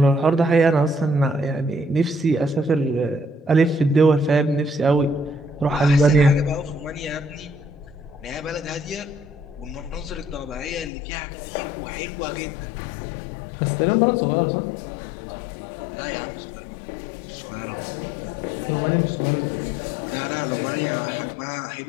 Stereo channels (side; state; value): right; drops out; at 10.9 s